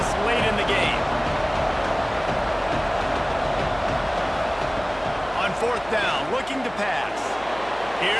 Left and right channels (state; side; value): noise; left; hum, 20 dB below the sound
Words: late in the game. On 4th down, looking to pass.